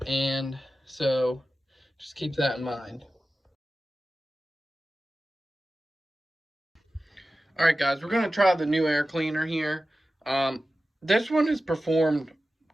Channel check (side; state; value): both; normal; correlation 0.94